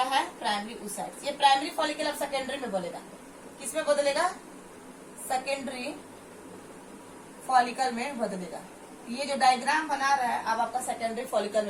है? Primary oocytes। ये प्राइमरी फॉलिकल अब सेकेंडरी में बदलेगा। किसमें बदलेगा? सेकेंडरी फॉलिकल में बदलेगा। ये जो डायग्राम बना रहा है अब आपका सेकेंडरी फॉलिकल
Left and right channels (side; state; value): both; identical; correlation 1.00